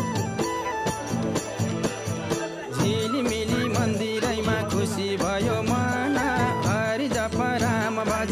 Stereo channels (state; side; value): identical; both; correlation 1.00